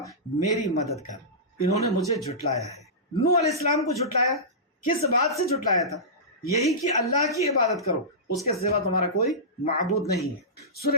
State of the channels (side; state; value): both; normal; correlation -0.18